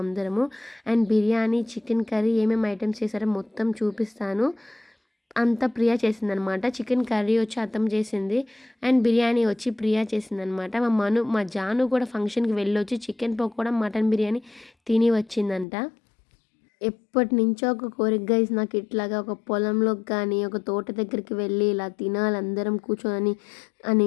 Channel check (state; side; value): drops out; right; at 15.7 s